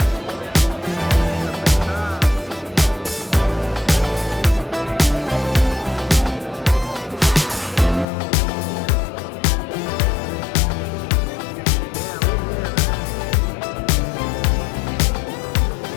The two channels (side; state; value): right; drops out; at 8.1 s